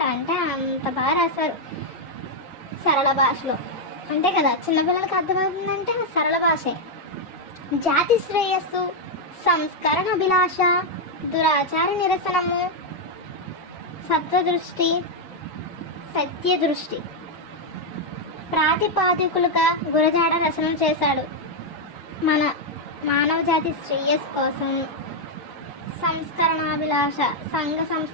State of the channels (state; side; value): normal; both; correlation 0.00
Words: అంటే అంత బాగా రాశారు సరళ భాషలో. అంతే కదా, చిన్నపిల్లలకి అర్థమవుతుందంటే సరళ భాషే. జాతి శ్రేయస్సు, సంస్కరణ అభిలాష, దురాచార నిరసనము, సత్వదృష్టి, సత్యదృష్టి ప్రాతిపాదికులుగా గురజాడ రచనలు చేశాడు. మన మానవ జాతి శ్రేయస్సు కోసం, సంస్కరణాభిలాష, సంఘ